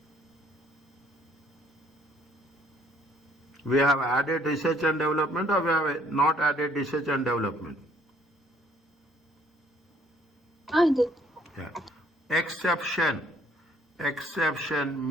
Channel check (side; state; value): both; normal; correlation 0.63